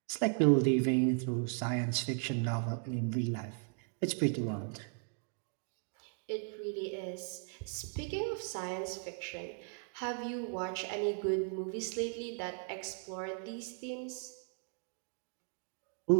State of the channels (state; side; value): silent; left; 53 dB below the other